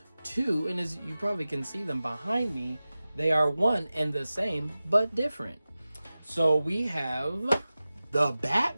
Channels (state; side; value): inverted; both; correlation -0.96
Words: two, and as you probably can see them behind me, they are one and the same, but different. So we have The